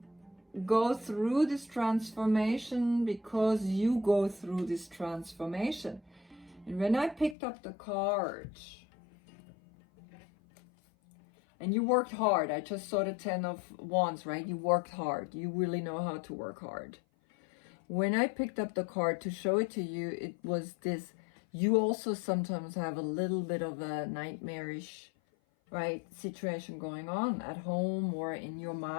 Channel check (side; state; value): right; drops out; at 7.4 s